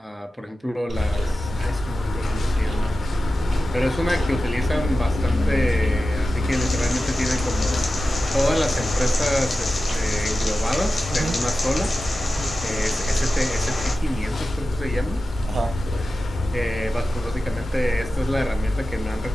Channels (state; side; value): normal; both; correlation 0.94